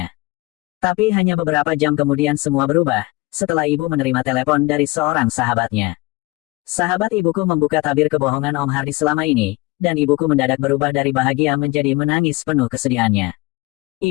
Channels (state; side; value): quieter; right; 22.1 dB